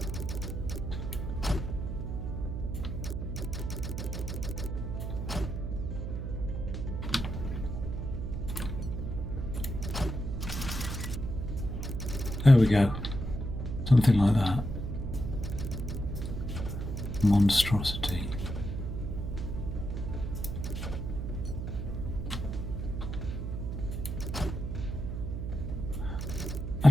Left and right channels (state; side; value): noise; right; hum, 4 dB below the sound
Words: There we go. Something like that. Monstrosity.